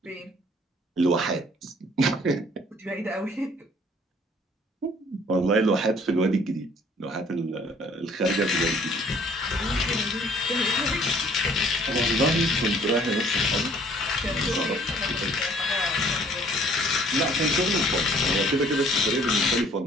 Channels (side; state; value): both; normal; correlation 0.58